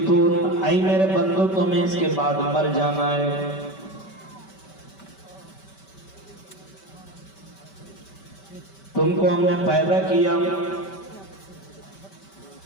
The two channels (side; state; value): right; late; 5.2 ms